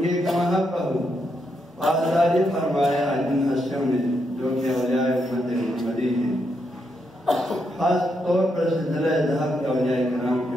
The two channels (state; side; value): normal; both; correlation 0.80